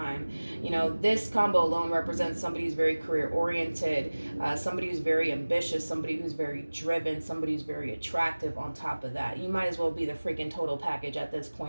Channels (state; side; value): inverted; both; correlation -1.00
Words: You know, this combo alone represents somebody who's very career-oriented, somebody who's very ambitious, somebody who's very driven, somebody who's very attractive on top of that. You might as well be the freaking total package at this